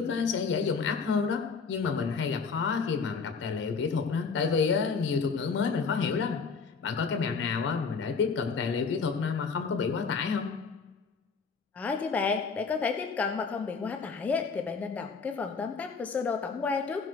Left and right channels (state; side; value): quieter; right; 5.2 dB